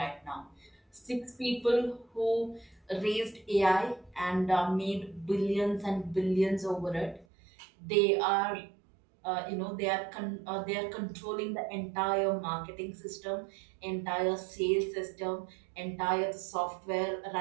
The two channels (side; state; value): left; drops out; at 7.2 s